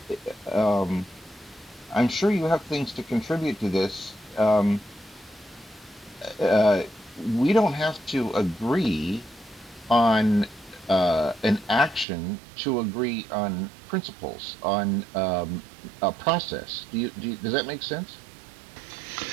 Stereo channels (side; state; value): left; drops out; at 12.1 s